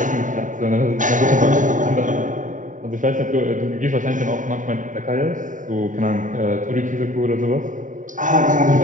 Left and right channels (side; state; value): left; late; 0.37 ms